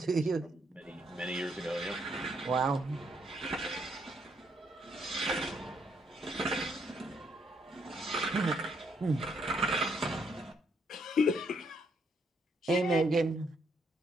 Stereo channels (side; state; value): both; normal; correlation 0.73